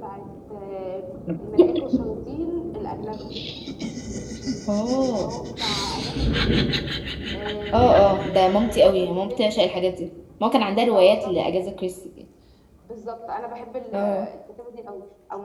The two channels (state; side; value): identical; both; correlation 1.00